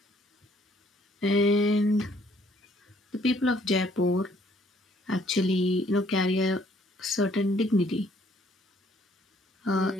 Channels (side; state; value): both; normal; correlation 0.64